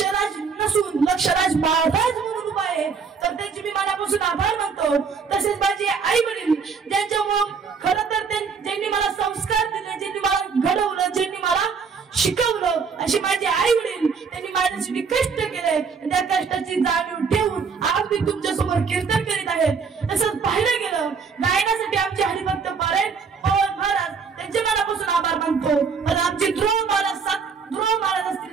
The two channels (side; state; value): left; quieter; 5.6 dB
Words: नसून लक्षराज महाराज म्हणून उभा आहे. तर त्यांची मी मनापासून आभार मानतो. तसेच माझे आई वडील ज्यांच्यामुळे खरं तर ज्यांनी मला संस्कार दिले, ज्यांनी मला घडवलं, ज्यांनी मला शिकवलं, असे माझे आई वडील, त्यांनी माझ्यासाठी कष्ट केले. त्या कष्टाची जाणीव ठेवून आज मी तुमच्या समोर कीर्तन करीत आहे. तसंच पाहिलं गेलं गायनासाठी आमचे हरिभक्त पारायण पवन महाराज त्यांचे मनापासून आभार मानतो. पण आमचे ध्रुव महाराज